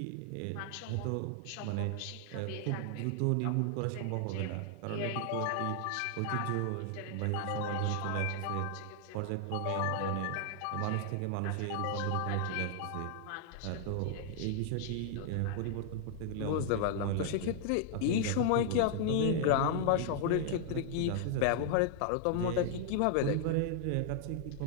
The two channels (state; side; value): different; both; correlation -0.01